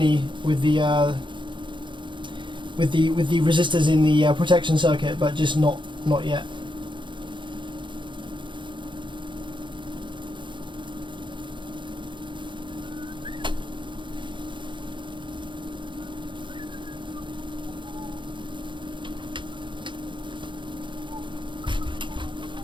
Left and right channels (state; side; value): late; left; 0.23 ms